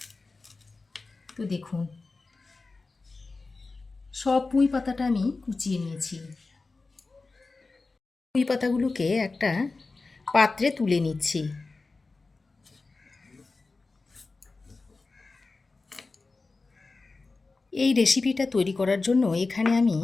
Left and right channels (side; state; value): right; quieter; 3.8 dB